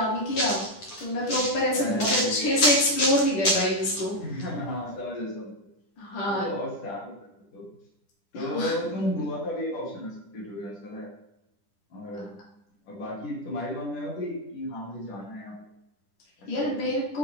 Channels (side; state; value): right; late; 10 ms